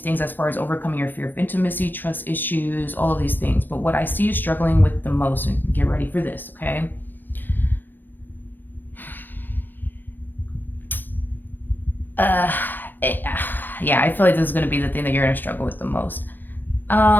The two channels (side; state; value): right; late; 0.092 ms